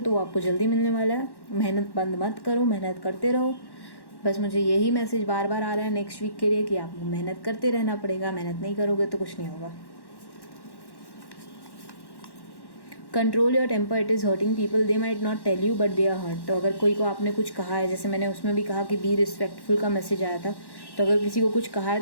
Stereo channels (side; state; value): right; late; 1.1 ms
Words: वो आपको जल्दी मिलने वाला है। मेहनत बंद मत करो, मेहनत करते रहो। बस मुझे यही मैसेज बार बार आ रहा है नेक्स्ट वीक के लिए कि आपको मेहनत करते रहना पड़ेगा, मेहनत नहीं करोगे तो कुछ नहीं होगा। Control your temper, it is hurting people, they might not tell you but they are hurt. तो अगर कोई को आपने कुछ कहा है, जैसे मैंने उसमें भी कहा कि बी रिस्पेक्टफुल का मैसेज आया था, तो अगर किसी को कुछ कहा है